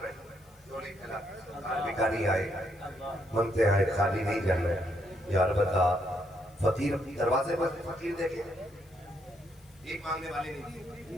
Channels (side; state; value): left; noise; hiss, 29 dB below the sound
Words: رہے جو نہیں کھلا بھکاری آئے منگتے آئے خالی نہیں جانا ہے. یار بتا فقیر دروازے پر فقیر دیکھیں ایک مانگنے والے